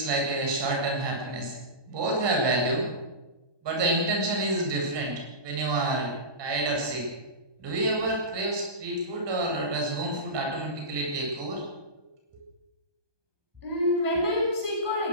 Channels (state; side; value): late; left; 1.2 ms